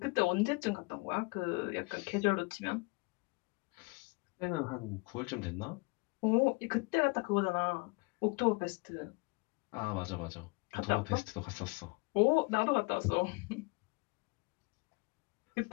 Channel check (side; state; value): right; quieter; 28.9 dB